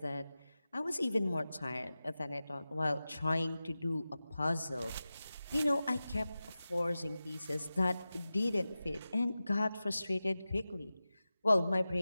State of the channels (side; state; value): both; inverted; correlation -0.95